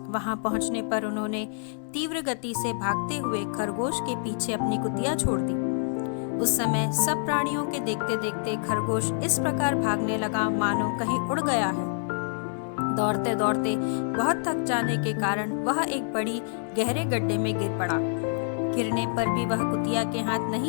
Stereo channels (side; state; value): right; silent; digital silence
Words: वहां पहुंचने पर उन्होंने तीव्र गति से भागते हुए खरगोश के पीछे अपनी कुतिया छोड़ दी। उस समय सब प्राणियों के देखते देखते खरगोश इस प्रकार भागने लगा मानो कहीं उड़ गया है। दौड़ते दौड़ते बहुत थक जाने के कारण वह एक बड़ी गहरे गड्ढे में गिर पड़ा। गिरने पर भी वह कुतिया के हाथ